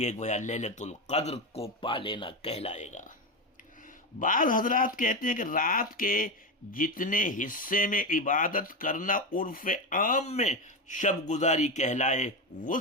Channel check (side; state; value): both; normal; correlation 0.15